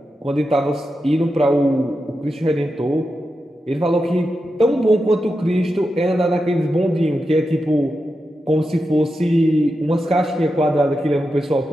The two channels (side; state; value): both; normal; correlation 0.89